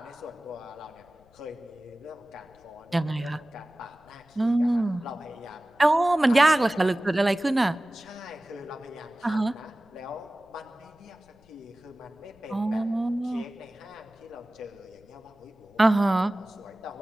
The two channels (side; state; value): left; noise; rumble, 30 dB below the sound